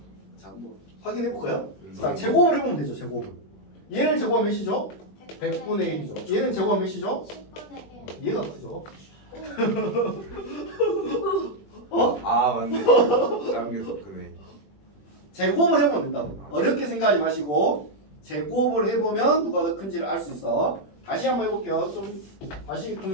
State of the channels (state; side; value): late; right; 21 ms